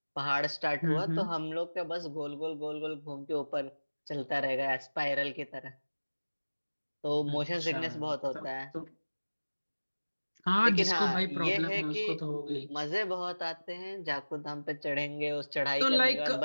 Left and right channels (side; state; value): both; inverted; correlation -1.00